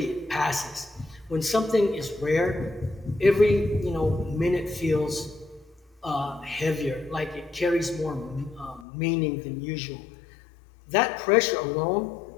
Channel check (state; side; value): drops out; right; at 8.8 s